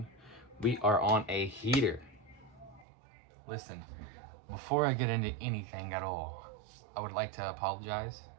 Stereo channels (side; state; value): left; drops out; at 2.9 s